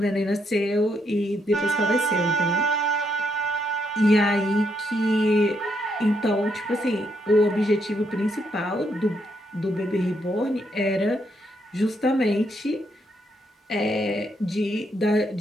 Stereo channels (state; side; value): normal; both; correlation 0.76